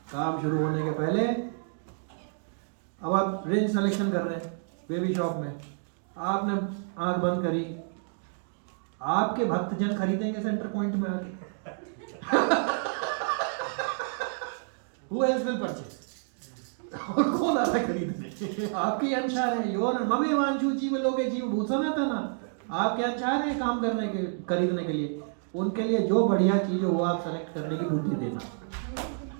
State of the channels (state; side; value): silent; left; digital silence